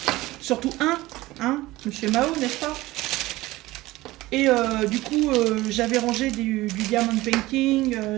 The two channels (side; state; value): left; quieter; 18.5 dB